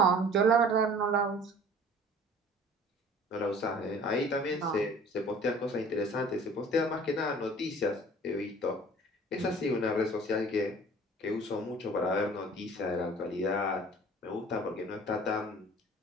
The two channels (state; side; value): normal; both; correlation 0.48